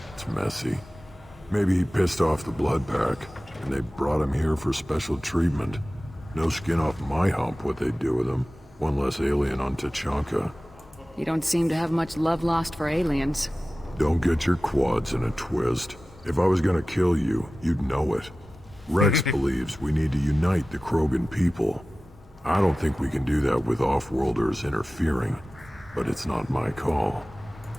It's messy. Maybe he pissed off the Blood Pack, and they brought him here for special treatment. No skin off my hump what they do with him. One less alien on Tuchanka. You don't seem to have much love lost for aliens. Don't get your quads in a twist. If I was gonna kill you, you'd know it. Rex believes we need to unite the Krogan people. I don't think we can do that with off-worlders interfering, but it's not my call.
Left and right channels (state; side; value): normal; both; correlation 0.96